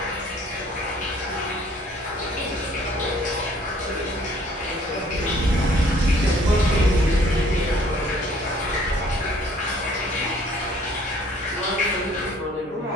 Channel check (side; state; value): both; normal; correlation 0.58